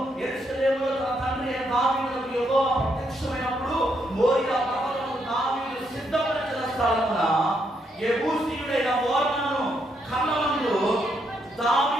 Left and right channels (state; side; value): normal; both; correlation 0.77